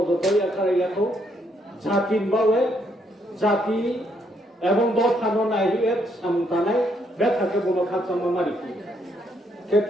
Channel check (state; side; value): normal; both; correlation 0.73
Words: Akarayako Jatin Bawe Jati এবং দল থানো নাই এর সামতানাই বেথাকে বলো খাচ্ছা মামারি